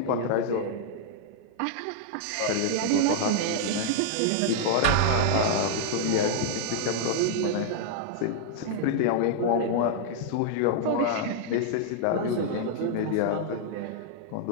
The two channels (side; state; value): both; different; correlation -0.01